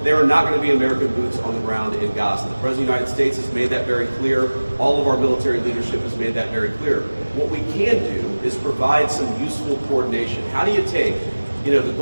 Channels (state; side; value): inverted; both; correlation -1.00